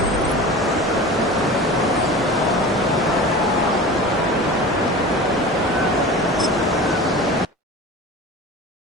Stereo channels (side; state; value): both; normal; correlation 0.35